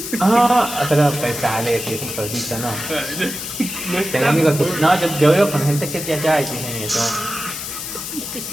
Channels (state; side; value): noise; left; hiss, 7 dB below the sound